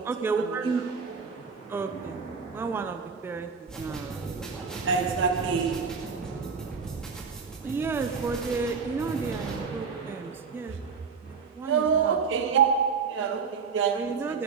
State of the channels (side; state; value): left; quieter; 5.5 dB